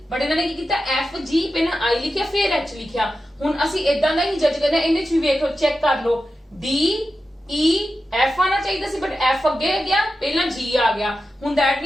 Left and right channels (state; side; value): normal; both; correlation 0.91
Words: बट इन्होंने की कीता FG पहला I लिखिया फिर H लिखिया हुण असी इदां दा ही जज करना इहदे विच भी देखो चेक कर लो DEF आना चाहिए सी बट F अगे गया पहला G आ गया हुण दैट